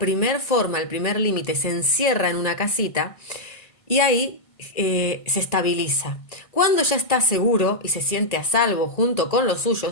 forma, el primer límite, se encierra en una casita y ahí se estabiliza. Cuando ya está seguro y se siente a salvo junto con los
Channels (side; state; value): right; late; 1.8 ms